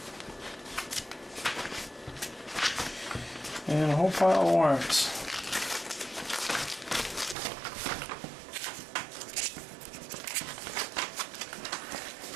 And a whole pile of warrants.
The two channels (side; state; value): left; drops out; at 7.4 s